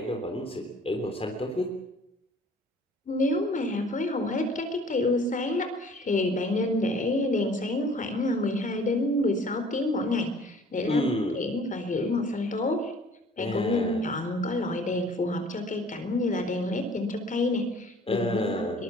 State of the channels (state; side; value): normal; both; correlation 0.52